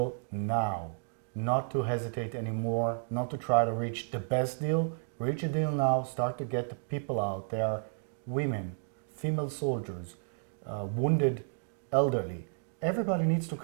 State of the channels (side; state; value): left; silent; digital silence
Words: now, not to hesitate anymore, not to try to reach the best deal. Reach a deal now, start to get the people out. There are women, female soldiers, wounded elderly. Everybody needs to